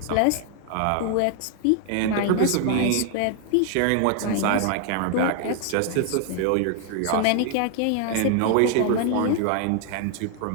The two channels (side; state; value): both; different; correlation 0.00